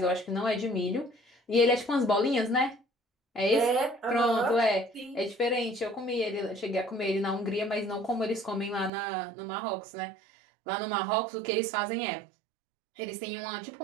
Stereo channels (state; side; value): drops out; left; at 8.9 s